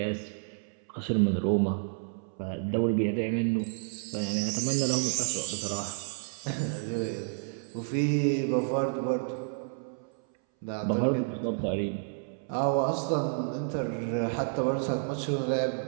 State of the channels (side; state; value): left; silent; 58 dB below the other